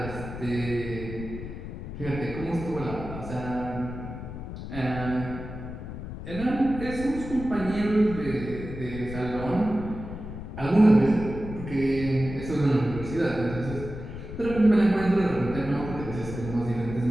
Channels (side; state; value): left; noise; rumble, 9 dB below the sound